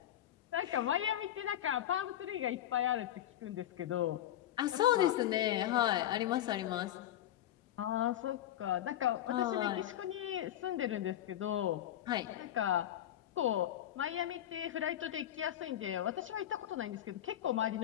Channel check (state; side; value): quieter; right; 12.0 dB